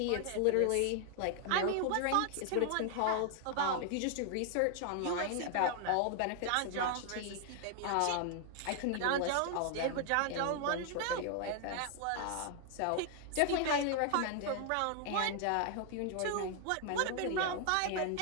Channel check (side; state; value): both; different; correlation 0.00